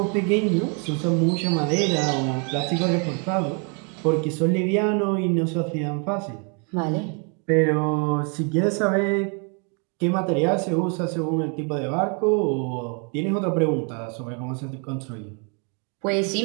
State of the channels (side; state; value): left; quieter; 37.3 dB